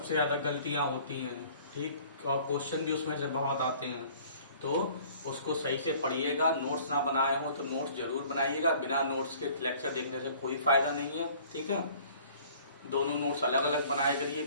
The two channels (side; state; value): both; inverted; correlation -0.52